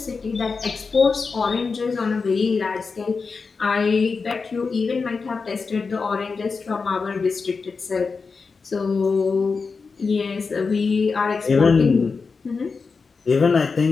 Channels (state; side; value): quieter; right; 4.7 dB